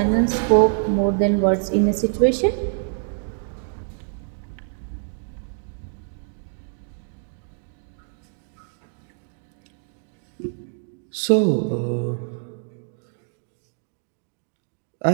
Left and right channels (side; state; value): left; silent; 62 dB below the other